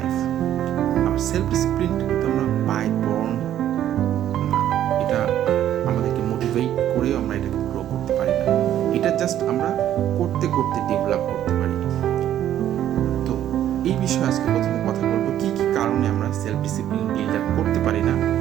আমার সেলফ ডিসিপ্লিনটা কিন্তু আমরা বাই বর্ন না, এটা আমাদেরকে মোটিভেট করেও আমরা এটাকে গ্রো করতে পারি না, এটা জাস্ট আমরা করতে করতে ডেভেলপ করতে পারি। তো এই বিষয়ে আজকে প্রথমে কথা বলবো কি কি কারণে আমরা সেলফ ডিসিপ্লিন বিল্ড আপ করতে পারি না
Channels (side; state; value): left; quieter; 11.4 dB